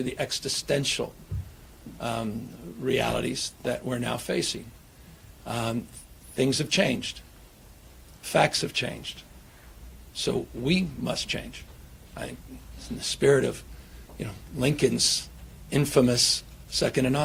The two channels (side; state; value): both; identical; correlation 1.00